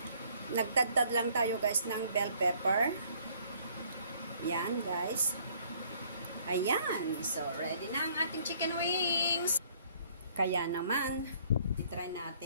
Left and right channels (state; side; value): inverted; both; correlation -0.61